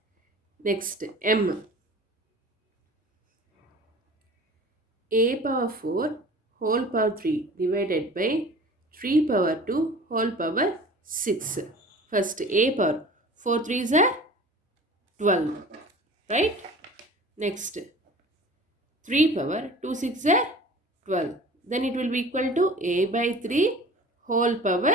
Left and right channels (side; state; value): both; normal; correlation 0.42